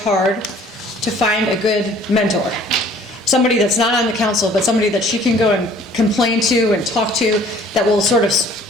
to find a good mentor. Somebody that's not on the council, but somebody that she can go and complain to and talk to, that will sort of,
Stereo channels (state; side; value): normal; both; correlation 0.54